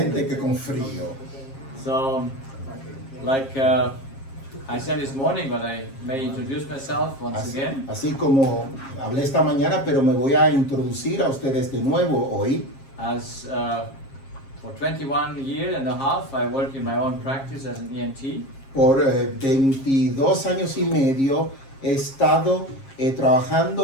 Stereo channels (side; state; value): right; late; 7.4 ms